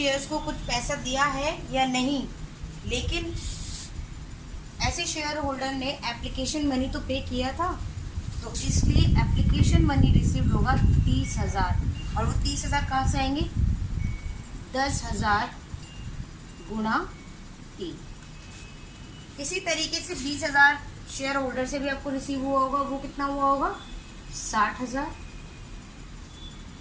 को कुछ पैसा दिया है या नहीं, लेकिन ऐसे शेयर होल्डर ने एप्लीकेशन मनी तो पे किया था, तो इसलिए एप्लीकेशन मनी रिसीव होगा 30,000। और वो 30,000 कहाँ से आएंगे? 10,000 गुणा 3। इसी तरीके से 20,000 शेयर होल्डर से भी आपको रिसीव हुआ होगा, वो कितना हुआ होगा? 60,000।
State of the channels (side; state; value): both; identical; correlation 1.00